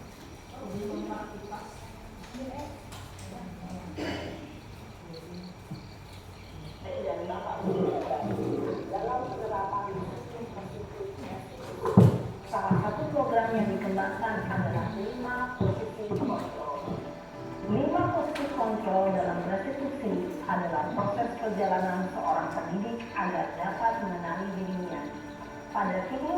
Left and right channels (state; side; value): identical; both; correlation 1.00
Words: Salah satu program yang dikembangkan adalah 5 posisi kontrol. 5 posisi kontrol dalam restitusi adalah proses perjalanan seorang pendidik agar dapat mengenali dirinya. Pada